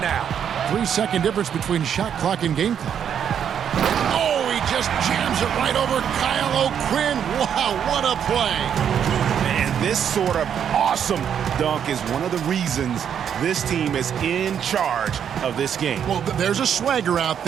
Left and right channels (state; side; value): quieter; left; 8.5 dB